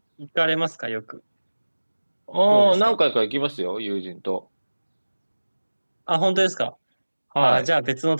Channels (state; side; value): inverted; both; correlation -1.00